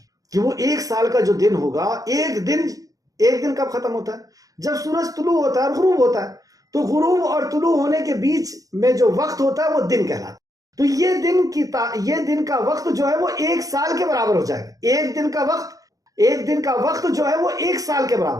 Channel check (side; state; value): left; late; 0.17 ms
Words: کہ وہ ایک سال کا جو دن ہوگا، ایک دن کب ختم ہوتا ہے؟ جب سورج طلوع ہوتا ہے اور غروب ہوتا ہے. تو غروب اور طلوع ہونے کے بیچ میں جو وقت ہوتا ہے وہ دن کہلاتا ہے. تو یہ دن کا وقت جو ہے وہ ایک سال کے برابر ہو جائے گا. ایک دن کا وقت جو ہے وہ ایک سال کے